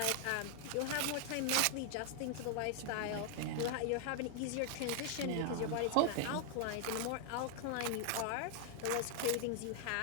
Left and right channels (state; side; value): different; both; correlation 0.00